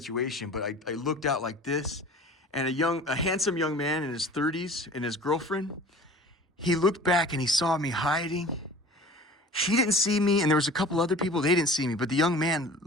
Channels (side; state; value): both; normal; correlation 0.43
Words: but I looked out like this, and a handsome young man in his 30s and his girlfriend, he looked back and he saw me hiding. She didn't see me, and there was a couple other people, they didn't see me, but the young man